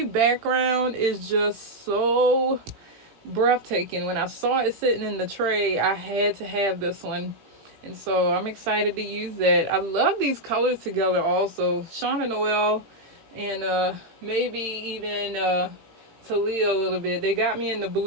background is just so breathtaking. When I saw it sitting in the tray, I had to have this one. And so I'm excited to use that. I love these colors together also. Shauna Noel and maybe even Talia a little bit. They got me in the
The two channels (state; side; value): late; left; 18 ms